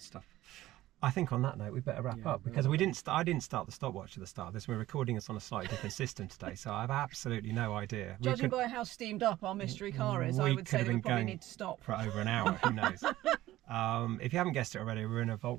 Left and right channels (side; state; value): left; quieter; 15.6 dB